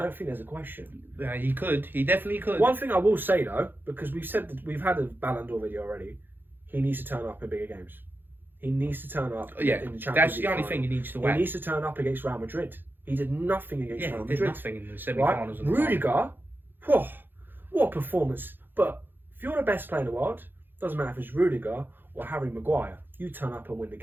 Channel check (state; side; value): late; left; 0.096 ms